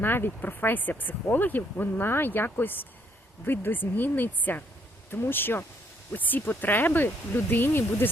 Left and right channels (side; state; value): both; normal; correlation 0.69